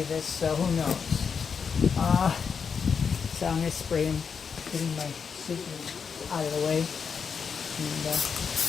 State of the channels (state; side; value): quieter; right; 6.2 dB